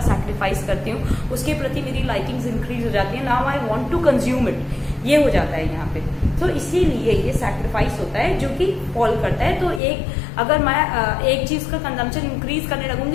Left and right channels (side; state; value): right; drops out; at 9.8 s